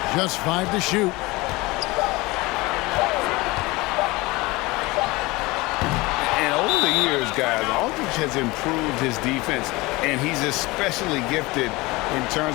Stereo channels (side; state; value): right; quieter; 22.3 dB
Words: Just 5 to shoot. And over the years, guys, Aldridge has improved his defense, and he's especially gifted in